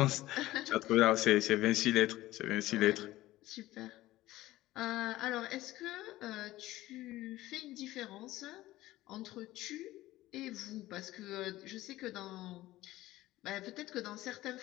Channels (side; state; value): right; quieter; 16.6 dB